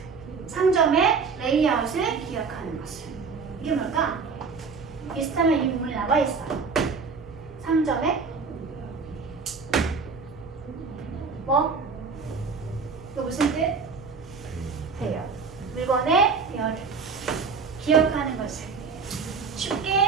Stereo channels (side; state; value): left; quieter; 5.0 dB